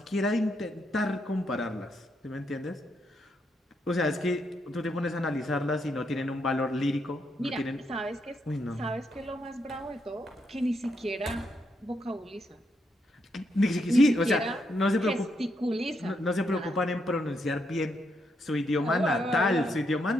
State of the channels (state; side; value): normal; both; correlation 0.79